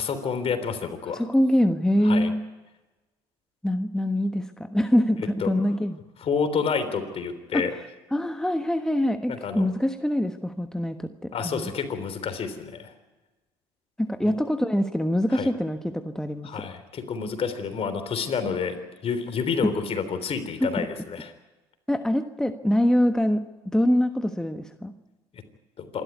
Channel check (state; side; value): normal; both; correlation 0.86